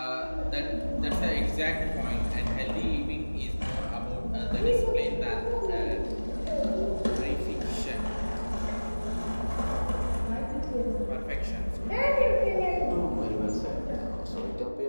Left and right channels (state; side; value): inverted; both; correlation -1.00